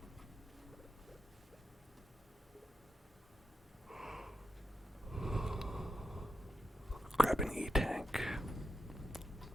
Grab an E-tank.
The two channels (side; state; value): both; normal; correlation 0.88